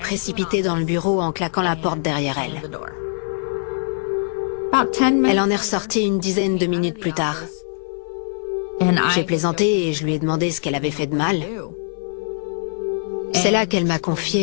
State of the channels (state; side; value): silent; right; digital silence